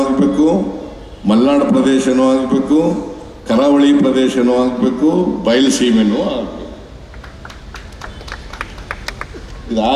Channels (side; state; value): both; identical; correlation 1.00